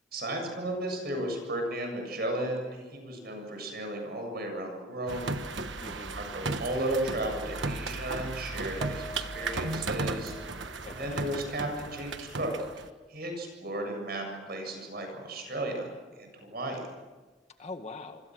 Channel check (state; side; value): normal; both; correlation 0.32